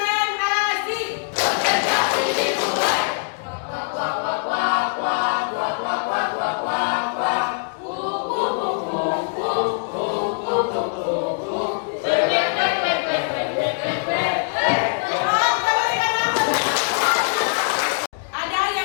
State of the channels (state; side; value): silent; right; digital silence